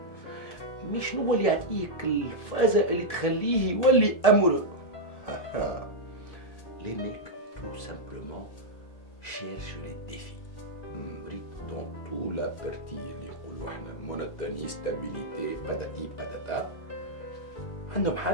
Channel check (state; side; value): late; right; 1.7 ms